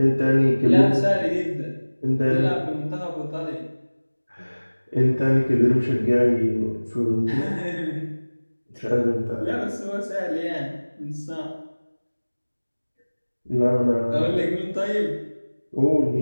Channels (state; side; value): inverted; both; correlation -1.00